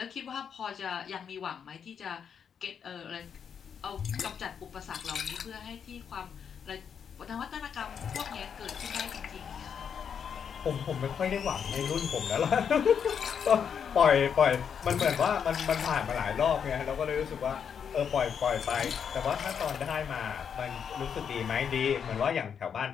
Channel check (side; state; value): right; quieter; 7.4 dB